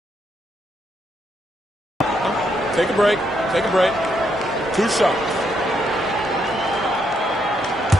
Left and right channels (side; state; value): both; normal; correlation 0.76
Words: Take a break. Take a break. 2 shots.